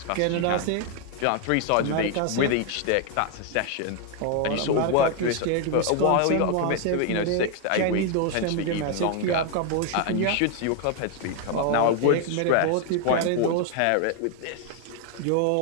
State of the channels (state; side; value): different; both; correlation 0.00